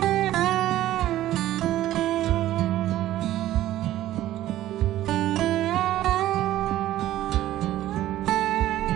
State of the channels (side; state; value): left; quieter; 14.0 dB